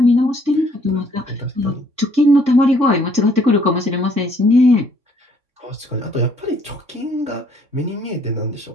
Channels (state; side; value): late; left; 3.6 ms